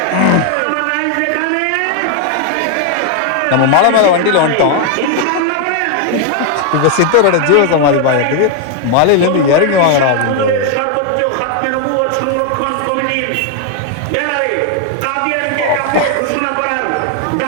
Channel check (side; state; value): both; different; correlation 0.01